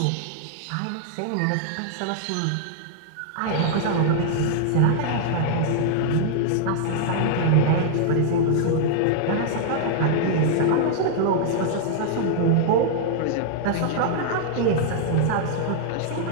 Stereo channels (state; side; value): different; both; correlation -0.01